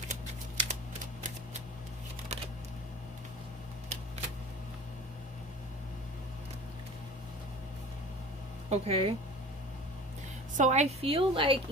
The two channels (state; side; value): normal; both; correlation 0.40